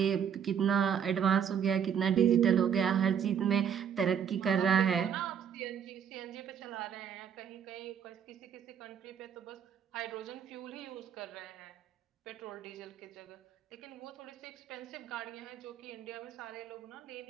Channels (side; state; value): left; quieter; 8.1 dB